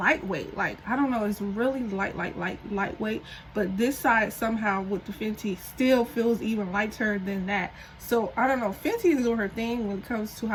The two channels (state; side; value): identical; both; correlation 1.00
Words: Like, I don't know, it's really lightweight, but this side somehow with the Fenty still feels even lighter than that. So I don't know, Fenty is doing her thing when it comes to